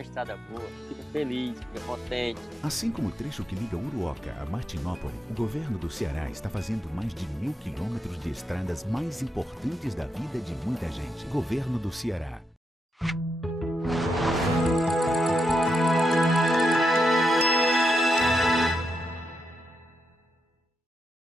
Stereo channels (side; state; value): both; normal; correlation 0.83